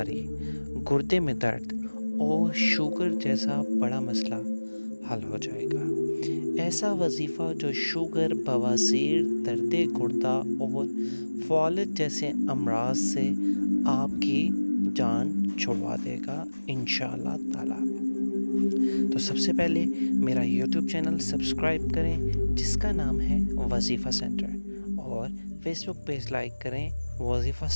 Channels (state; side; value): inverted; both; correlation -1.00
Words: گردے میں درد اور شوگر جیسا بڑا مسئلہ حل ہو جائے گا۔ ایسا وظیفہ جو شوگر، بواسیر، درد گردہ اور فالج جیسے امراض سے آپ کی جان چھڑوا دے گا انشاءاللہ تعالی۔ تو سب سے پہلے میرا یوٹیوب چینل سبسکرائب کریں جس کا نام ہے وظیفہ سینٹر، اور فیس بک پیج لائک کریں وظیفہ